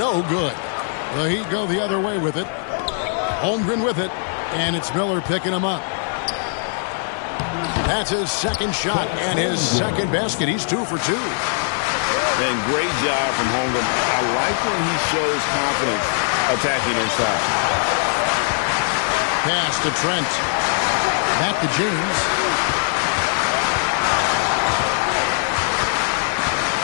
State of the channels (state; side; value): silent; right; digital silence